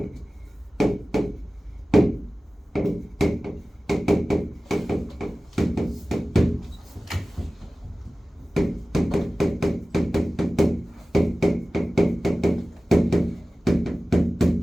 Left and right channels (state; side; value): normal; both; correlation 0.97